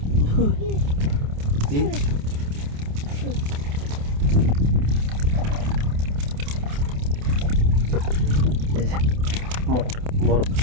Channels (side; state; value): left; late; 28 ms